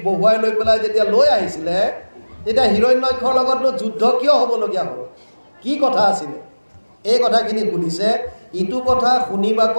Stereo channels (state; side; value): inverted; both; correlation -1.00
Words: বহুৱাই লৈ পেলাই যেতিয়া লৈ আহিছিলে, তেতিয়া হিৰণ্যক্ষৰ লগতনো যুদ্ধ কিয় হ'বলগীয়া হ'ল, কি কথা আছিলে, এই কথাখিনি সুধিছে। ইটো কথা শুনিবাক